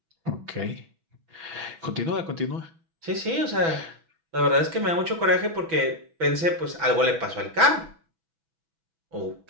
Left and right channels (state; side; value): late; left; 6.1 ms